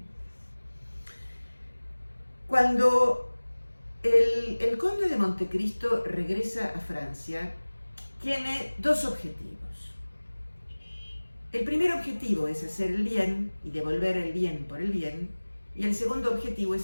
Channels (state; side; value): inverted; both; correlation -1.00